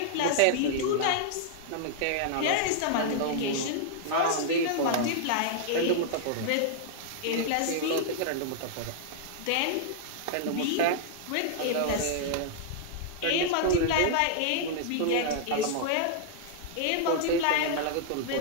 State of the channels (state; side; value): different; both; correlation -0.01